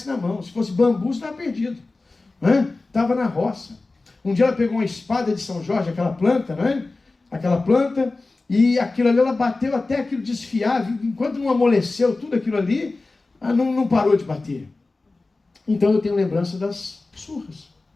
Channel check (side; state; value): right; quieter; 3.4 dB